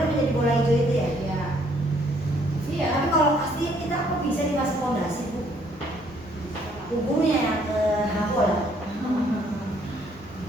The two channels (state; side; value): normal; both; correlation 0.65